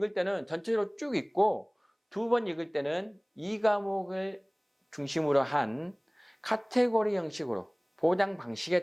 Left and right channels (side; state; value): both; identical; correlation 1.00